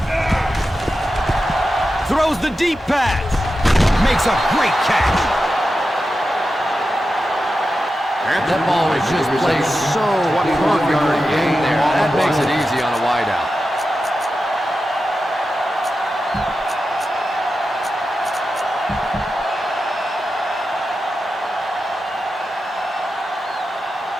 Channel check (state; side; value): normal; both; correlation 0.91